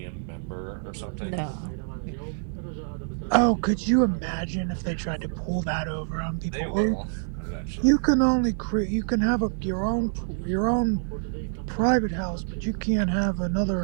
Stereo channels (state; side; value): silent; left; 61 dB below the other